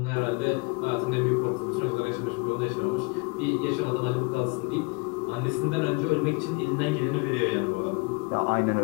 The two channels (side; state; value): right; quieter; 28.7 dB